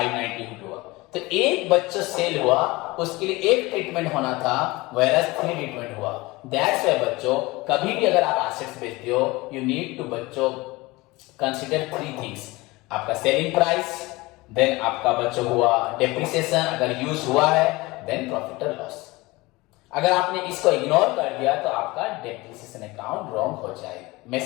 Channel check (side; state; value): right; quieter; 21.9 dB